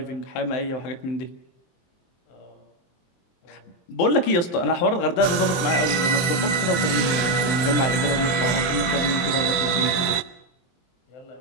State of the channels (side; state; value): right; late; 22 ms